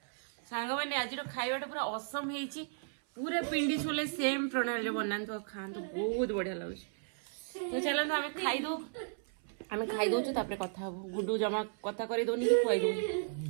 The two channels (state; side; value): silent; left; 55 dB below the other